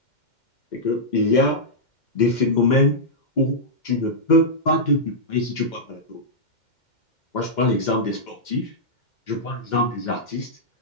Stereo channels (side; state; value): right; late; 2.1 ms